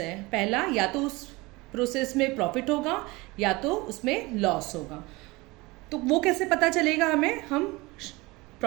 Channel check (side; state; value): left; quieter; 23.0 dB